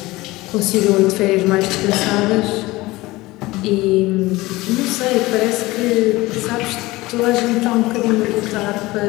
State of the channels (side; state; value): right; quieter; 20.0 dB